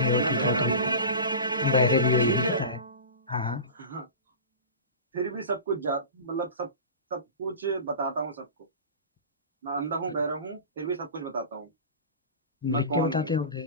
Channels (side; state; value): both; inverted; correlation -0.32